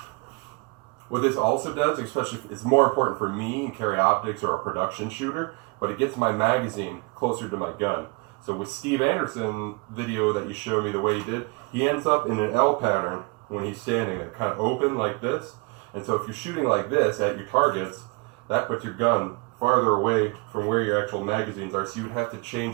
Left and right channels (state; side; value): quieter; left; 30.5 dB